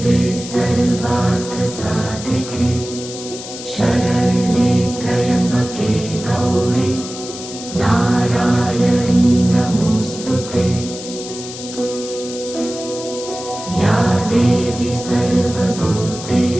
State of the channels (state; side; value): noise; left; hiss, 11 dB below the sound